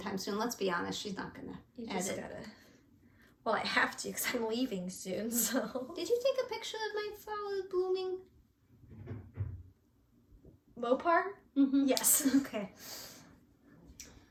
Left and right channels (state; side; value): identical; both; correlation 1.00